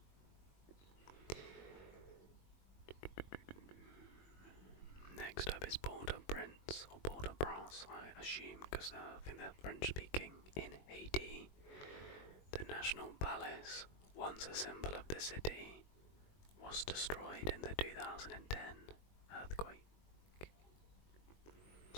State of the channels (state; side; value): late; right; 21 ms